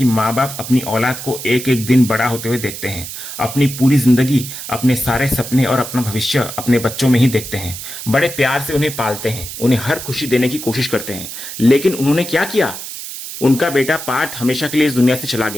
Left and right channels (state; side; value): noise; right; hiss, 9 dB below the sound